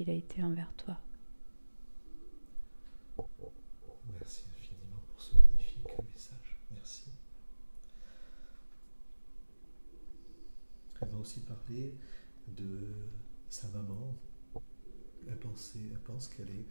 a été envers toi. Merci infiniment pour ce magnifique message. Merci. Elle m'a aussi parlé de sa maman. Elle pense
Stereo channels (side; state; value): both; inverted; correlation -1.00